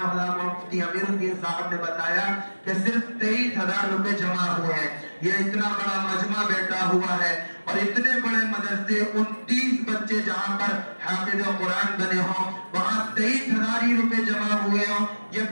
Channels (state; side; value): inverted; both; correlation -1.00